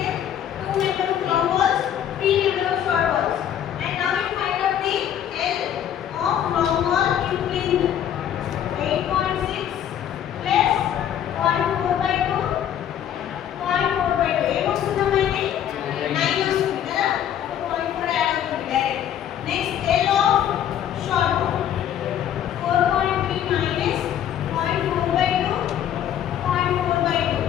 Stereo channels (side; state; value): right; quieter; 10.2 dB